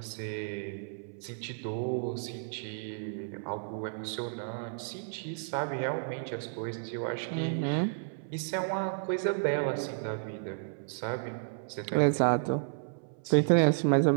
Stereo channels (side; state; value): left; silent; 56 dB below the other